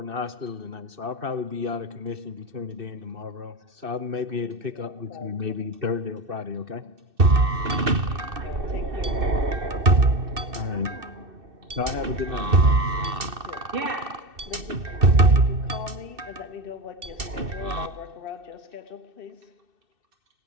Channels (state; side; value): late; left; 2.6 ms